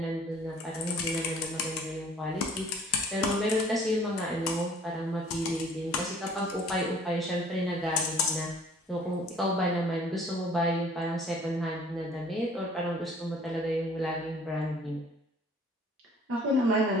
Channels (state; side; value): normal; both; correlation 0.54